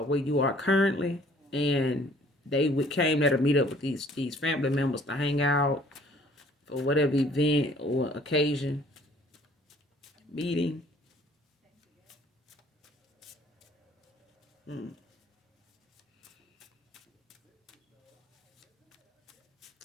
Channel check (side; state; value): both; normal; correlation 0.57